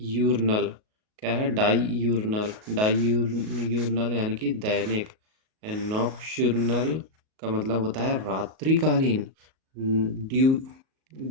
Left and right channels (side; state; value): left; late; 38 ms